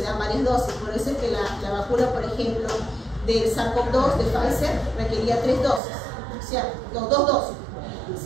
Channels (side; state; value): left; drops out; at 5.8 s